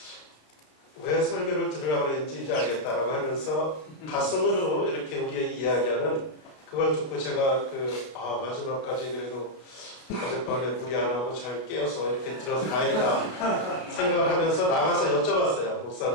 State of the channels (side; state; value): right; late; 33 ms